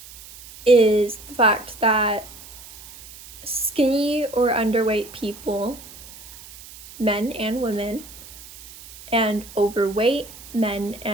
is the fact that skinny or underweight people, men and women, and overweight men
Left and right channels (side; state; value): right; noise; hiss, 18 dB below the sound